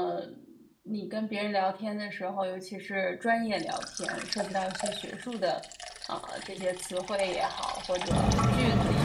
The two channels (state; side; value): identical; both; correlation 1.00